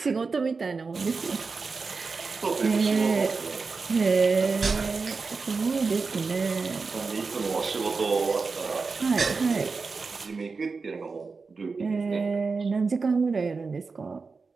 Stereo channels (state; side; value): quieter; left; 4.5 dB